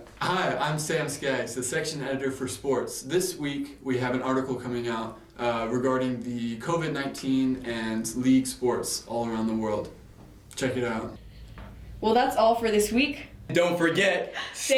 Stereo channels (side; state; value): both; identical; correlation 1.00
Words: Hi, I'm Sam Skaggs, the section editor for sports. This week we have an article coming out regarding the COVID-19 and league sports all around the world. Check it out. Well, that's all for this week. Don't forget,